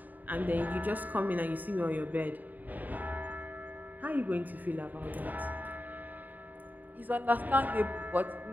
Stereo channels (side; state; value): left; late; 0.084 ms